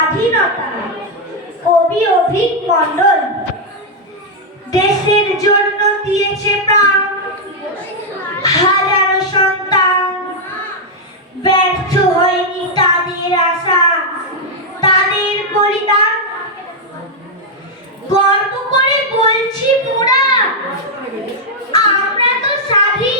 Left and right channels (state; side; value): normal; both; correlation -0.02